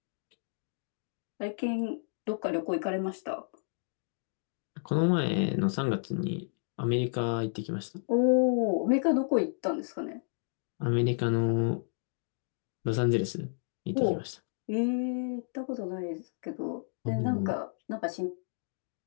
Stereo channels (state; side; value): silent; right; digital silence